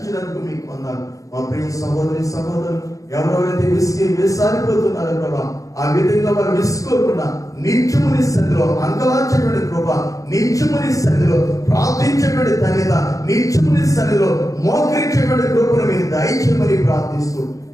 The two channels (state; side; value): late; right; 0.16 ms